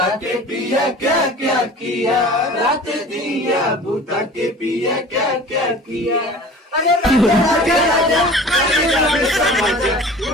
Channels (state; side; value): normal; both; correlation 0.42